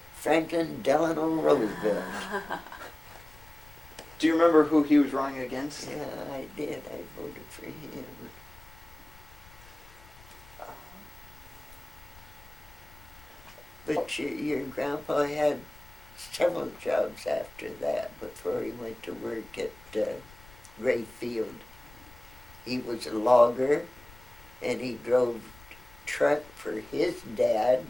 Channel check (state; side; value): noise; left; rumble, 21 dB below the sound